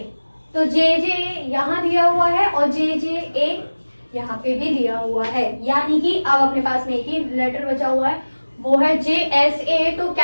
तो JJA यहाँ दिया हुआ है और JJA यहाँ पे भी दिया हुआ है, यानी कि अब अपने पास में एक ही लेटर बचा हुआ है, वो है JSA। तो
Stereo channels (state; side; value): inverted; both; correlation -1.00